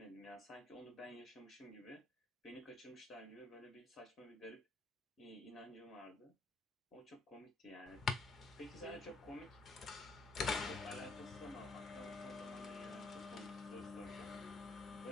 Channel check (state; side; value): quieter; right; 3.2 dB